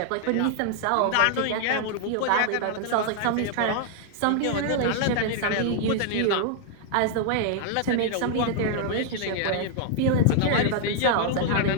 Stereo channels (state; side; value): different; both; correlation 0.00